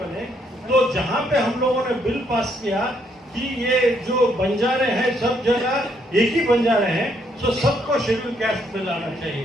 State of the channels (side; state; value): both; normal; correlation 0.72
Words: बने, तो जहां पे हम लोगों ने बिल पास किया कि ये जो बंजारे हैं सब जगह एक ही बंजारे हैं, तो सबको शेड्यूल कास्ट में लाना